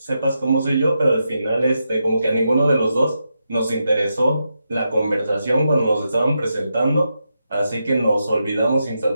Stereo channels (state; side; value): inverted; both; correlation -0.86